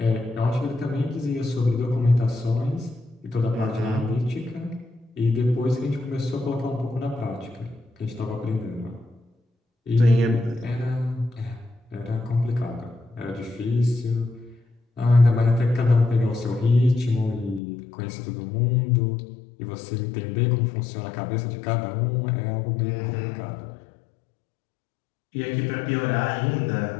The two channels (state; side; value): drops out; right; at 17.6 s